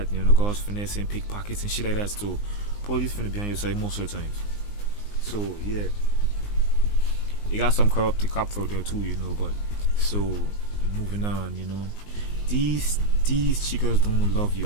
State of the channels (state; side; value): late; right; 19 ms